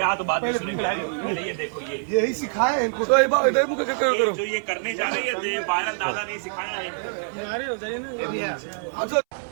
तो बात में सुनेंगे। पहले ये देखो, ये यही सिखाए हैं इनको। तो एक बार इधर मुझे करो। जो ये करने जा रहे हैं ये वायरल दादा ने सिखाया है।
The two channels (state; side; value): silent; left; 62 dB below the other